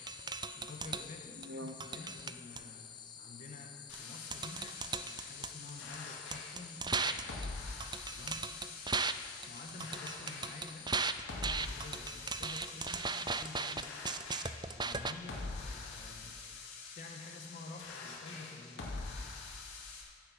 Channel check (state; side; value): normal; both; correlation 0.09